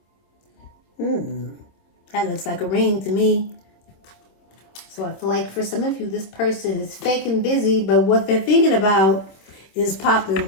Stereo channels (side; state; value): right; late; 26 ms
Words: That looks like a ring to me. So I feel like for some of you, this person is fake and busy, but what they're thinking about is